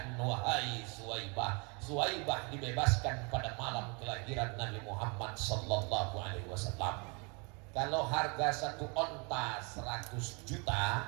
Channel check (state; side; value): quieter; left; 32.1 dB